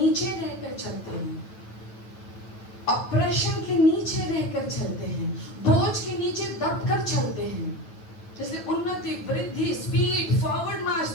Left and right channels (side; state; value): right; late; 9.2 ms